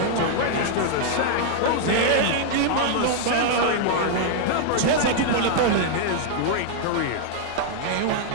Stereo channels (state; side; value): different; both; correlation 0.00